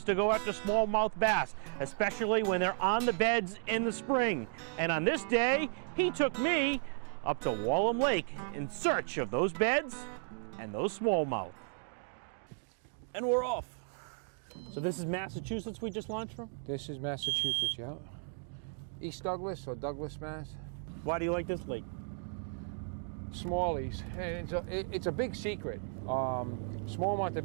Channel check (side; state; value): left; silent; 55 dB below the other